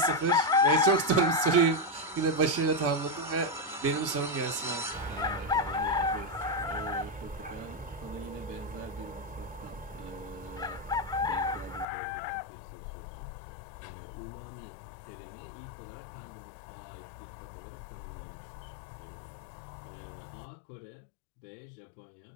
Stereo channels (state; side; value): drops out; right; at 11.9 s